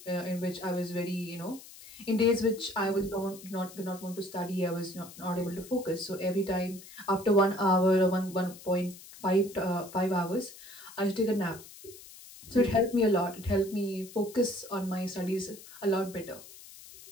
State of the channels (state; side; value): noise; left; hiss, 18 dB below the sound